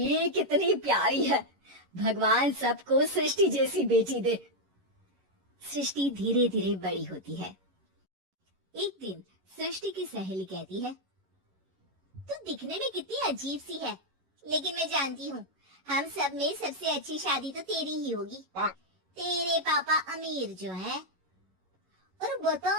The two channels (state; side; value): late; left; 11 ms